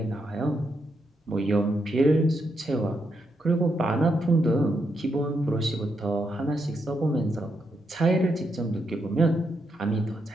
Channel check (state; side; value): normal; both; correlation 0.81